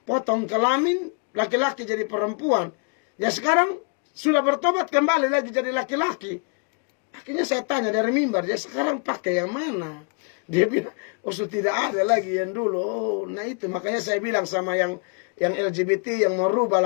potong kelamin, laki-laki jadi perempuan. Ya sekarang sudah bertobat kembali lagi jadi laki-laki. Akhirnya saya tanya dari mimbar, dia sekarang pakai yang mana? Dia bilang, oh sudah tidak ada lagi yang dulu. Oh, nah itu makanya saya bilang sama yang LGBT yang merubah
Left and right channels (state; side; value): quieter; right; 35.9 dB